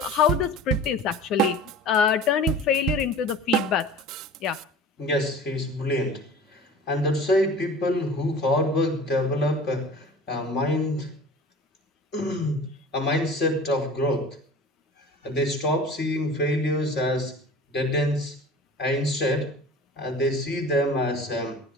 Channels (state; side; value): normal; both; correlation 0.40